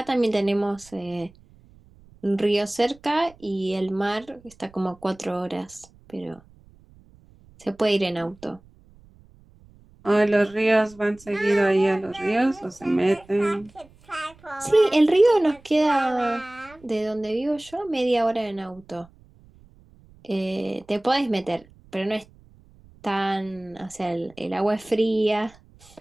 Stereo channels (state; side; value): noise; right; rumble, 27 dB below the sound